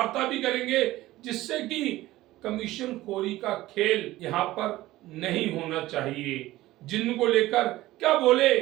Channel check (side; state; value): left; quieter; 16.8 dB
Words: भी करेंगे, जिससे कि कमीशन खोरी का खेल यहाँ पर नहीं होना चाहिए। जिनको लेकर क्या बोले